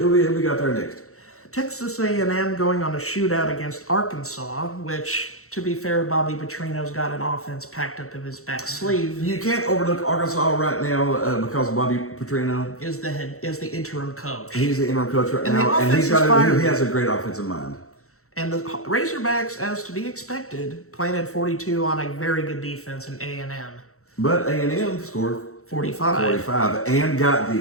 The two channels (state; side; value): late; right; 0.64 ms